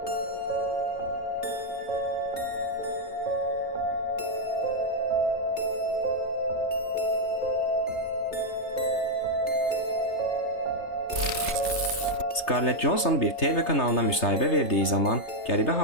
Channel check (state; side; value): late; right; 3.3 ms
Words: Scarlett Johansson bir TV kanalına müsahibə verdiyi zaman qəribə